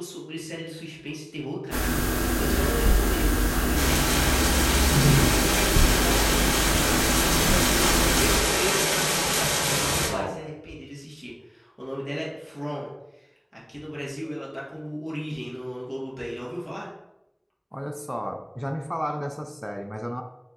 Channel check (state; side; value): identical; both; correlation 1.00